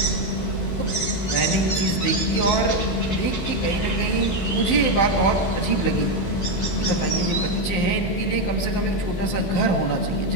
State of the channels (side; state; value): right; late; 15 ms